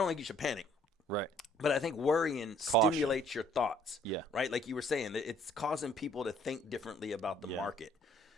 think you should panic. Right. But I think worrying stimulates your thoughts. Yeah. Right? Like you were saying, it's causing people to think differently about the market.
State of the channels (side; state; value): both; normal; correlation 0.59